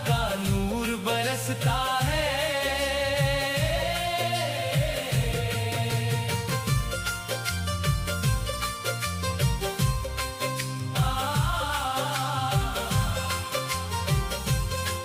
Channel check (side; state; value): both; identical; correlation 1.00